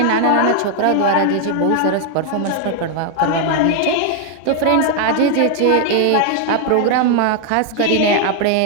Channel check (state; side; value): different; both; correlation 0.00